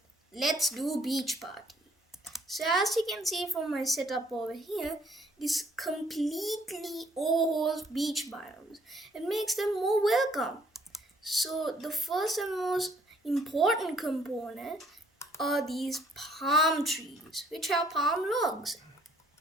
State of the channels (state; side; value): normal; both; correlation 0.64